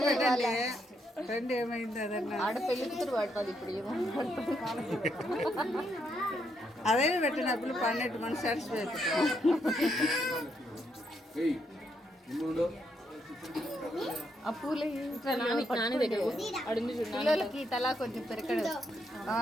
ట్రెండ్ ఏమైంది అదన్నా ఆడ పెళ్లి కూతురు పడుతుంది ఇప్పుడు ఏమో అదే పెట్టినప్పుడు పన్నెట్టు మన సాటిస్ఫై ఆ పూలు నాని దగ్గర అడుంది పిల్లలకి తలా కొంచెం పెరకడు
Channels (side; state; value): both; normal; correlation 0.77